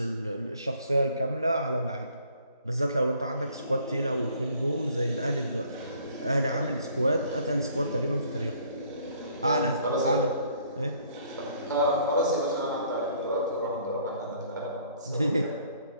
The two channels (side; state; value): both; inverted; correlation -0.60